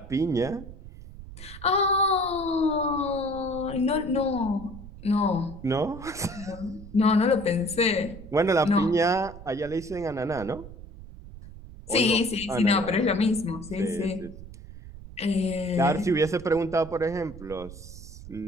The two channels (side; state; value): right; noise; rumble, 15 dB below the sound